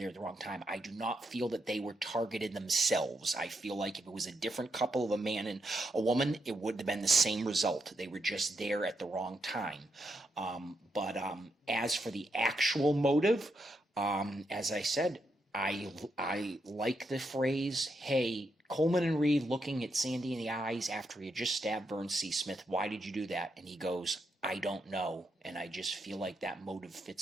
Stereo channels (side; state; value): both; normal; correlation 0.81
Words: at the wrong time. I do not feel that they were targeted themselves. I feel like if it was a different couple of a man and a woman, it would have been the same result. They were just there at the wrong time. But as for the actual motive, as I said, I like the phrase, hey, Coleman and Reed looking at Sandy in the eyes after he had just stabbed Vern C. Smith, why did you do that? And he goes, I don't know. And I just feel like that motive